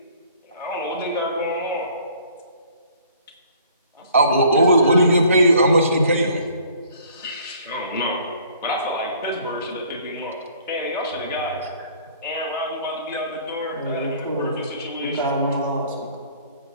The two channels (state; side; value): inverted; both; correlation -0.56